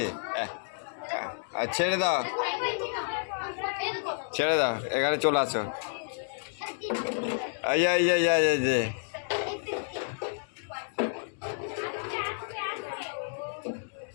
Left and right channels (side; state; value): right; silent; digital silence